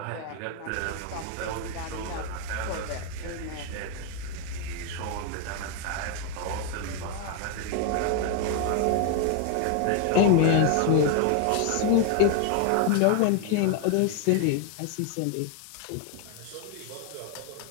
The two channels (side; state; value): both; different; correlation 0.01